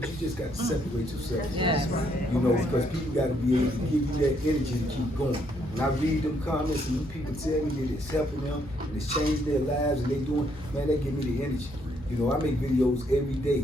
you just got to separate yourself. Because people got to be able to give you that energy to keep going. When I read them comments and them people tell me that it's helping them and it's changing their lives and they doing, man, that give me the energy. I make videos every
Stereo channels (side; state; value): both; normal; correlation 0.71